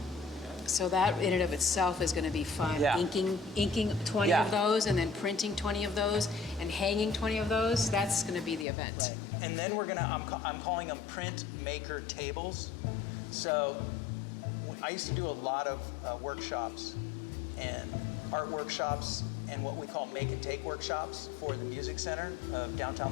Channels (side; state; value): right; drops out; at 8.7 s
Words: So that in and of itself is going to be fun. Yeah. Inking 20 Yeah. of those, and then printing 20 of those, and hanging 20 of those. That's going to be the event. Right. And then we're gonna, I'm calling them Printmaker tables. So I used to do a lot of workshops and art workshops and what we call make and take workshops for the Music Center of downtown